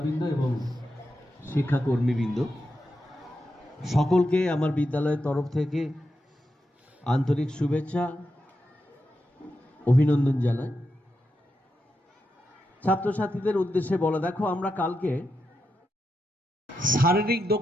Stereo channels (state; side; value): normal; both; correlation 0.87